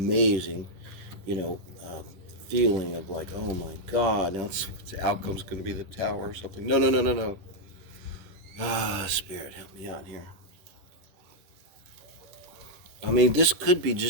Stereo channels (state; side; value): late; left; 10 ms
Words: feeling of like, oh my God, now the outcome's going to be the tower or something. No, no, no, no, no. Spirit, help me out here. I mean, this could be